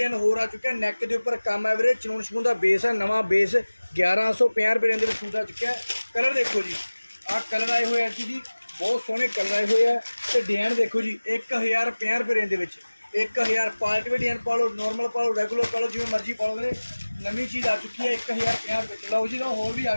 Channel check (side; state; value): both; inverted; correlation -1.00